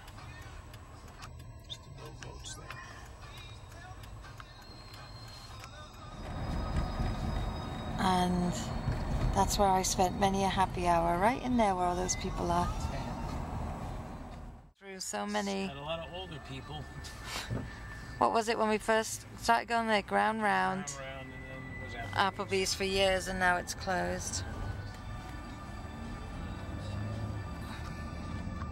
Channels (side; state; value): both; identical; correlation 1.00